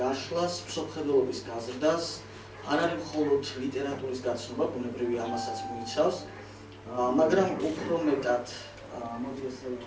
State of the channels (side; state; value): both; identical; correlation 1.00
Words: გაშლას, მსოფლმხედველობის გაზრდას, არ არის მხოლოდ ლიტერატურის გაცნობა, ბუნებრივი ამასაც მოიცავს, მაგრამ უფრო მეტად მოდი ასე